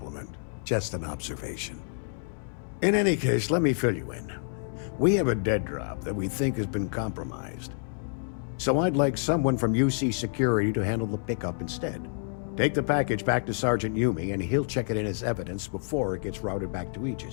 Just an observation. In any case, let me fill you in. We have a dead drop that we think has been compromised. So I'd like someone from UC Security to handle the pickup instead. Take the package back to Sergeant Yumi, and he'll check it in as evidence before it gets routed back to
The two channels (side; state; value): right; silent; digital silence